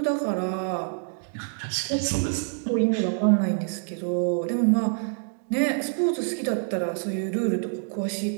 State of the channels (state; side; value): silent; left; 59 dB below the other